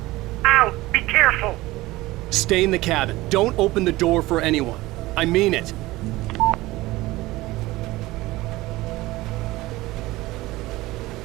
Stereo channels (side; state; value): left; quieter; 18.9 dB